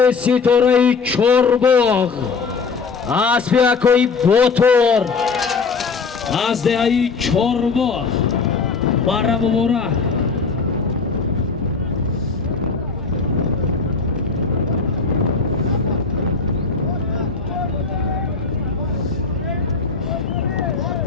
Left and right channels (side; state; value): right; quieter; 4.7 dB